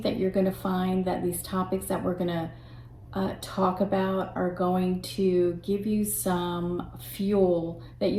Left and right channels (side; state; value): both; identical; correlation 1.00